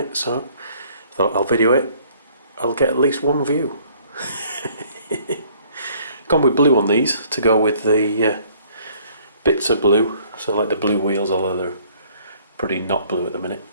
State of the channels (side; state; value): both; inverted; correlation -0.59